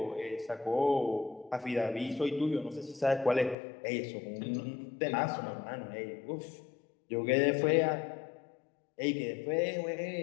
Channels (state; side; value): drops out; right; at 3.6 s